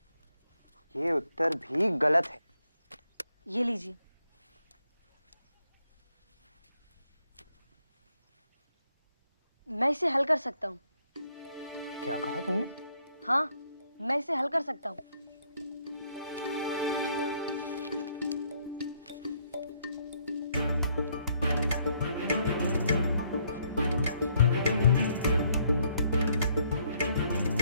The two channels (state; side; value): inverted; both; correlation -0.71